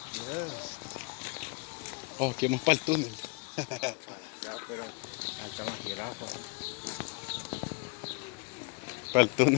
Oh, aquí vamos para el túnel. Para el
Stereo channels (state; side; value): quieter; right; 32.3 dB